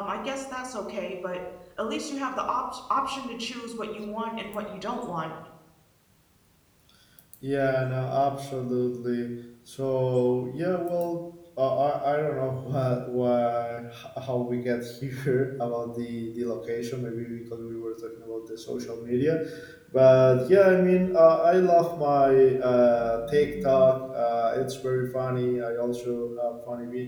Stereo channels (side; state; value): both; identical; correlation 1.00